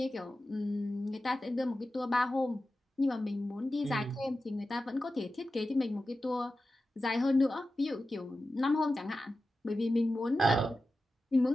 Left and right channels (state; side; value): normal; both; correlation 0.93